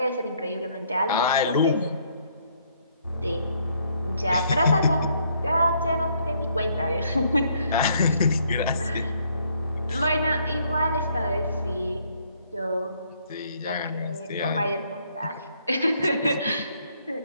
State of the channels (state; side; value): inverted; both; correlation -0.68